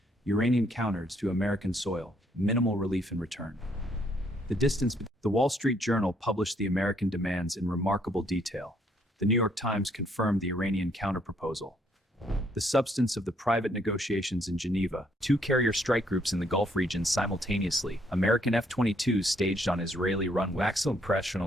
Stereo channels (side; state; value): both; normal; correlation 0.69